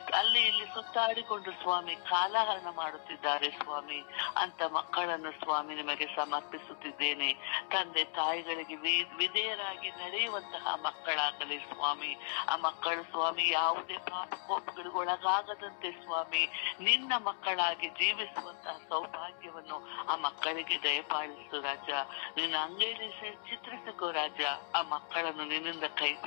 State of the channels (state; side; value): silent; right; 54 dB below the other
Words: ಅಲ್ಲಿ ಇಲ್ಲಿ ಸುತ್ತಾಡಿಕೊಂಡು ಸ್ವಾಮಿ ಕಾಲಹರಣ ಮಾಡುತ್ತಿದ್ದಾರೆ ಸ್ವಾಮಿ. ಅಂತ ಮಕ್ಕಳನ್ನು ಸ್ವಾಮಿ ನಿಮಗೆ ಸಮರ್ಪಿಸುತ್ತಿದ್ದೇನೆ. ತಂದೆ ತಾಯಿಗಳಿಗೆ ವಿಧೇಯರಾಗಿ ನಡೆಯುವಂತಹ ಮಕ್ಕಳಾಗಲಿ ಸ್ವಾಮಿ. ಆ ಮಕ್ಕಳು ಸ್ವಾಮಿ ಯಾವುದೇ ಪಾಪಕೋಪಗಳಿಗೆ ಒಳಗಾಗದಂತೆ ಸ್ವಾಮಿ ನಿನ್ನ ಮಕ್ಕಳಾಗಿ ಜೀವಿಸುವಂತಹ ಸೌಭಾಗ್ಯವನ್ನು ಆ ಮಕ್ಕಳಿಗೆ ದಯಪಾಲಿಸು ರಾಜ. ನಿನ್ನ ಅಂಗೈಲಿ ಚಿತ್ರಿಸಿಕೋ ರಾಜ. ಆ ಮಕ್ಕಳನ್ನು ನಿನ್ನಿಂದ ಕೈ